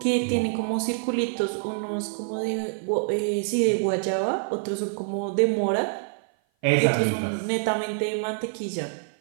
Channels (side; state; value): left; silent; 56 dB below the other